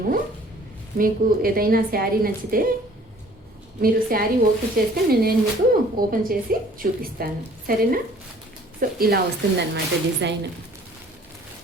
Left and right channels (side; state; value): both; normal; correlation 0.54